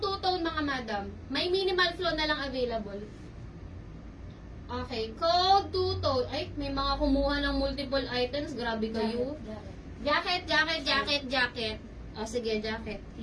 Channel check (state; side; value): identical; both; correlation 1.00